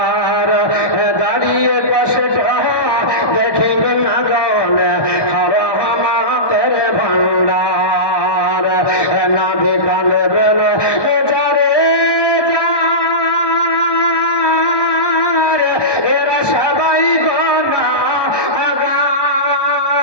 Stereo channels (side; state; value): right; late; 1.2 ms